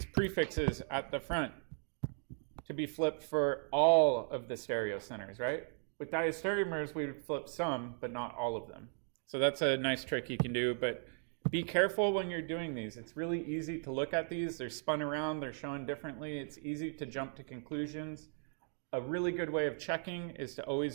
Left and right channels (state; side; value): silent; left; 53 dB below the other